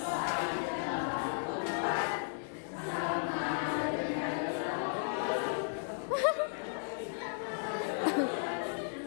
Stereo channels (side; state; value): right; silent; digital silence